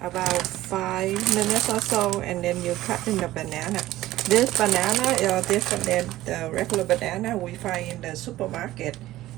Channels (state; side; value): quieter; left; 15.7 dB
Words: 5 minutes or so, and then you cut in the banana. This banana is different than the regular banana we find in the supermarket.